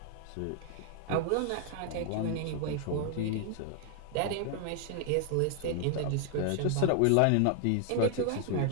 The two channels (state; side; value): different; both; correlation 0.00